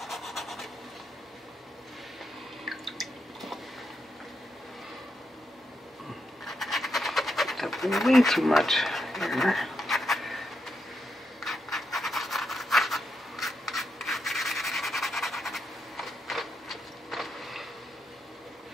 Got way too much here.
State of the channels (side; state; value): both; normal; correlation 0.82